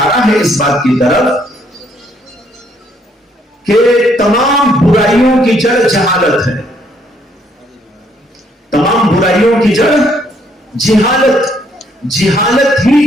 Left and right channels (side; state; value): both; normal; correlation 0.68